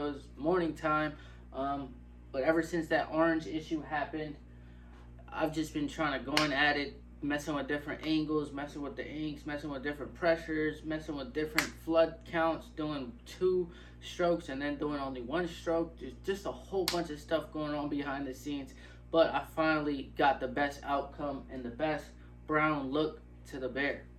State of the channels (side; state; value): both; identical; correlation 1.00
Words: It was morning time. But ever since that orange issue happened, I've just been trying to go in at it, messing with different angles, messing with the inks, messing with different pressures, messing with different flood counts, doing 2 strokes and then doing only 1 stroke. There's just a whole bunch of stuff going on behind the scenes. But I finally got the best outcome and the best brown look to the bear.